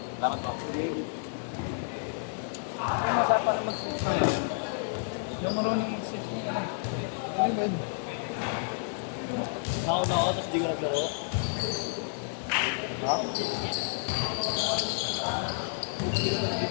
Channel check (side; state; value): right; silent; digital silence